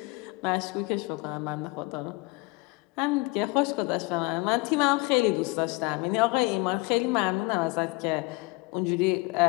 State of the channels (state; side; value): quieter; right; 25.5 dB